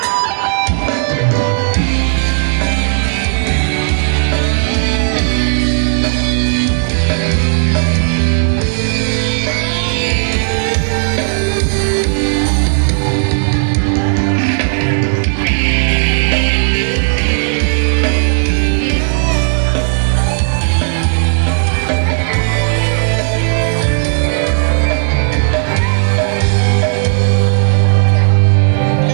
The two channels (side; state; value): left; silent; digital silence